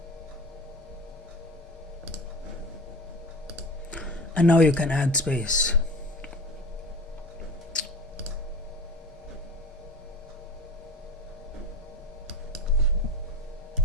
And now you can add space.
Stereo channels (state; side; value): normal; both; correlation 0.35